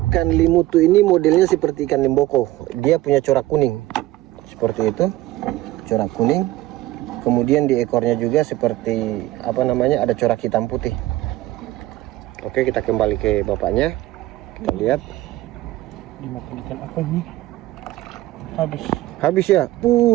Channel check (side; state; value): left; quieter; 16.4 dB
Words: limutu ini modelnya seperti ikan limboko. Dia punya corak kuning. Seperti itu. Corak kuning. Kemudian di ekornya juga seperti apa namanya? Ada corak hitam putih. Oke, kita kembali ke bapaknya. Kita lihat. Dimakan ikan apa ini? Habis ya.